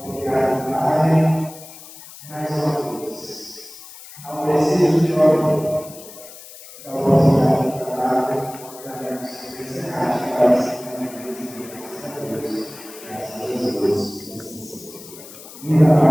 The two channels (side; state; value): left; noise; hiss, 17 dB below the sound